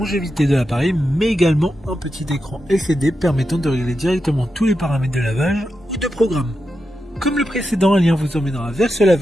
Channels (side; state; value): both; normal; correlation 0.88